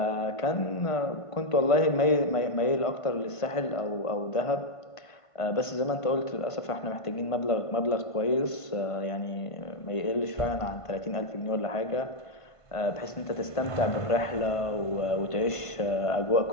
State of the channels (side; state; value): right; late; 1.5 ms